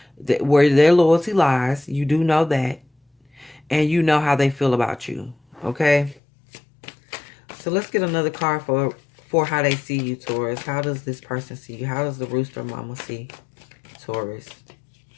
that where their loyalty lies. You do know that. And you know how they feel about you, okay? So let's get another card for how they see you, Taurus. How does this person see you? How does the rooster mama see Taurus?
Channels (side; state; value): right; drops out; at 6.2 s